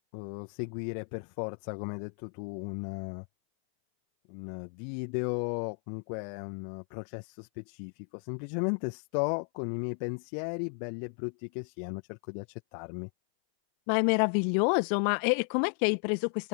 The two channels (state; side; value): silent; right; 55 dB below the other